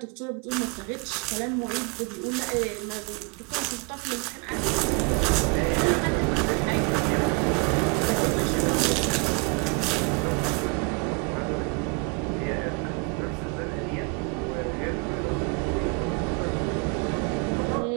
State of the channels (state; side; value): quieter; left; 32.3 dB